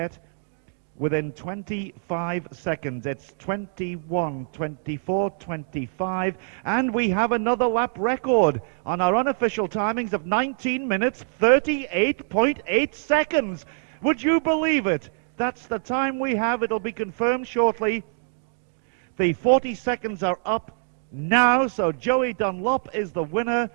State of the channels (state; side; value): silent; left; digital silence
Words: within 25 seconds. It's 21, 24, 25, and we have another lap record on our unofficial timings of 19 minutes, 38.8 seconds. Would you believe it? That's the time we have. It'll be confirmed shortly. The 40 seconds are up now, so Joey Dunlop is the winner,